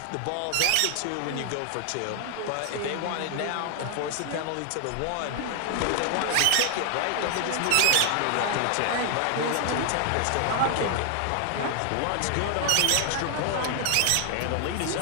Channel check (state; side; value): different; both; correlation 0.00